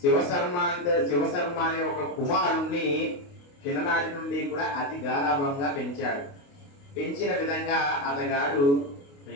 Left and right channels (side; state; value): right; late; 28 ms